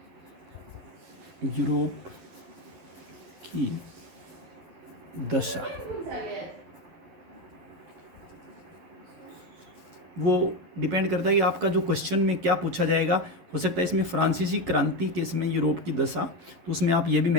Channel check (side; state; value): left; late; 11 ms